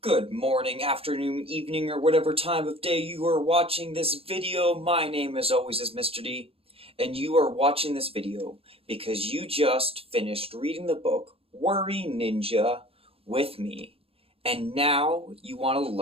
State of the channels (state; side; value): late; left; 0.28 ms